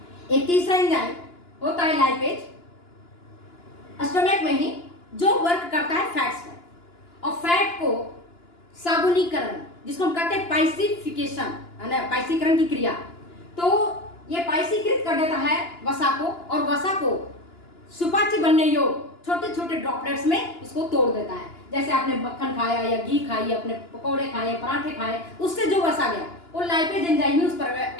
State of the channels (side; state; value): right; late; 2.9 ms